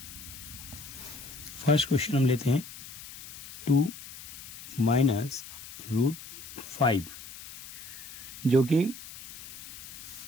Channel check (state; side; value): noise; left; hiss, 14 dB below the sound